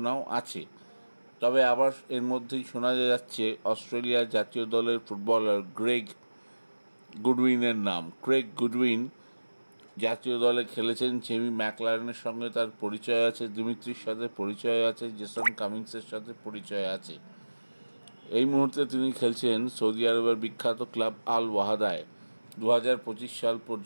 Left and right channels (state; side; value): inverted; both; correlation -1.00